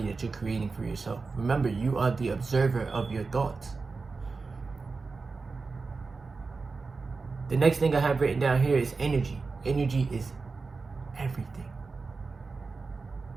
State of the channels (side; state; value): left; quieter; 4.3 dB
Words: that you're creating for yourself. Remember, you are the observer of your thoughts. The next thing I have written down here is energy. Energy is everything.